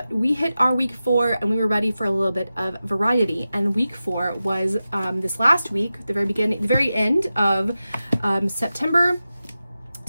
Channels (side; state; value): both; inverted; correlation -0.93